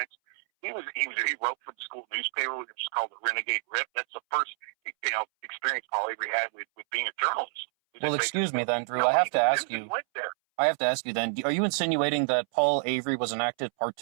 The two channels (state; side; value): silent; left; 59 dB below the other